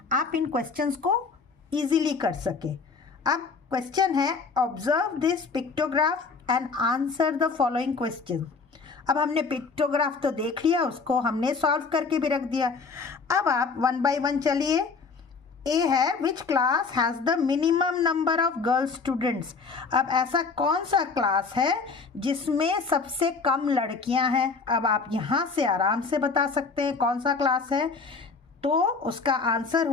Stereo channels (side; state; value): right; quieter; 4.7 dB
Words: आप इन क्वेश्चंस को इजीली कर सके। अब क्वेश्चन है observe this pictograph and answer the following question. अब हमने पिक्टोग्राफ तो देख लिया, उसको हमने सॉल्व करके भी रख दिया। अब आप 1 बाय 1 चलिए। ए है which class has the minimum number of girl students. अब ऐसा कौन सा क्लास है जिसमें सबसे कम लड़कियां हैं। अब आप यहाँ से आराम से बता सकते हैं कौन सा क्लास है। तो उसका आंसर